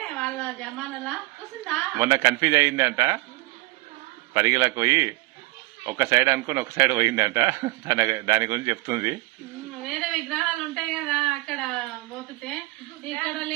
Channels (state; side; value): quieter; left; 21.7 dB